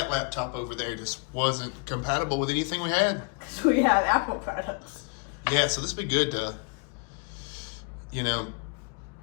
laptop over there just wasn't compatible with anything we had. Because we have Apple products. Yeah, so this would be good to,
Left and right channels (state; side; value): quieter; right; 35.1 dB